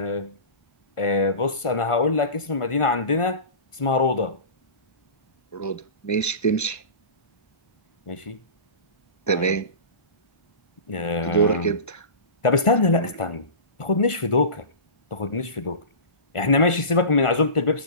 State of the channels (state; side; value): late; right; 1.4 ms